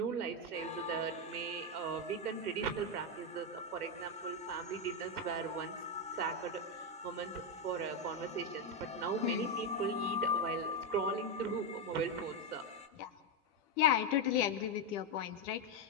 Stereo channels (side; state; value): both; normal; correlation 0.05